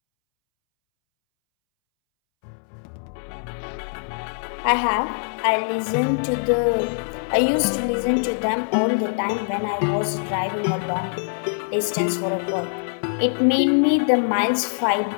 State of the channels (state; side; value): silent; right; 63 dB below the other